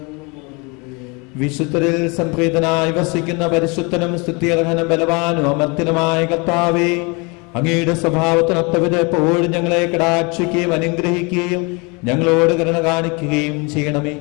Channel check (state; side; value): quieter; right; 29.5 dB